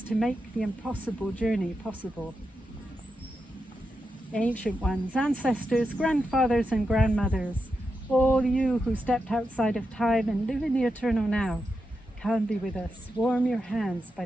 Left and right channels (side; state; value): both; normal; correlation 0.87